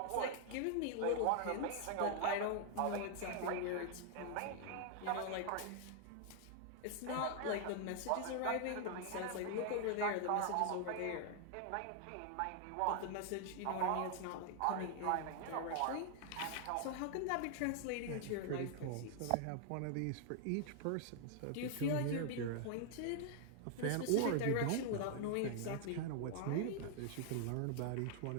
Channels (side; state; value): both; different; correlation 0.00